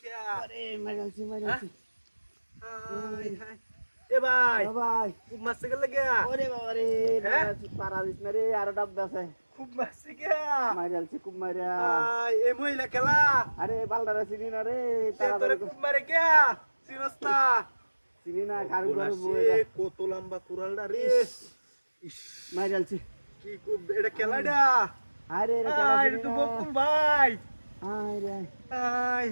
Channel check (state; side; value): inverted; both; correlation -1.00